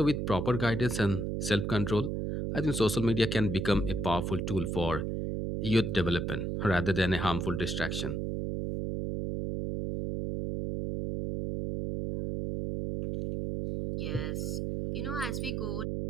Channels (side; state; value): right; noise; hum, 2 dB below the sound